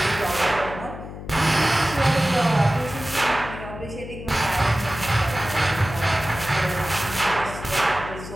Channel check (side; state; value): left; noise; hum, 11 dB below the sound